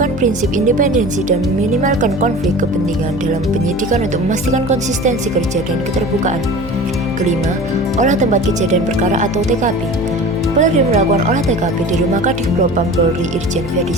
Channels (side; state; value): left; noise; hum, 12 dB below the sound